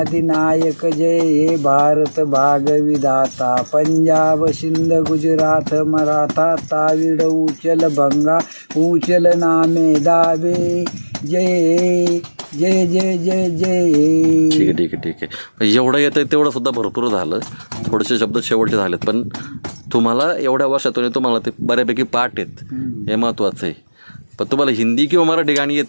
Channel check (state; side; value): inverted; both; correlation -1.00